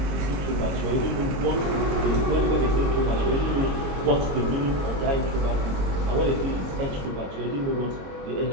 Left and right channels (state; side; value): late; left; 22 ms